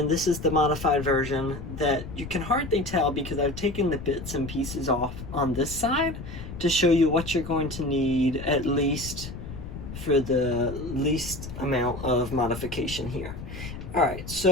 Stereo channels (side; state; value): left; noise; rumble, 10 dB below the sound